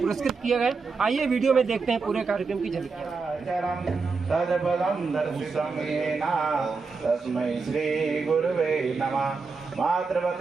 किया गया। आइए वीडियो में देखते हैं पूरे कार्यक्रम की झलकियाँ। मातृवत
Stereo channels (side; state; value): left; quieter; 4.6 dB